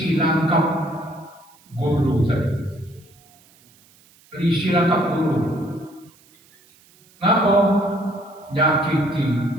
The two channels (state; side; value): noise; right; hiss, 29 dB below the sound